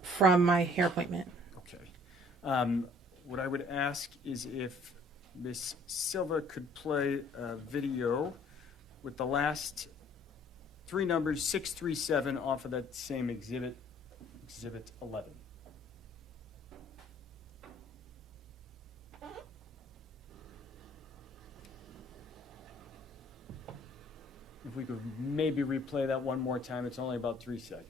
from my hair appointment. Okay. What I would ask is if Miss Silva could play a video with the last 3 numbers, 637, off of that same exhibit, Exhibit 11. If we could maybe replay that one more time, it's only about 3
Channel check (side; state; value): both; normal; correlation 0.57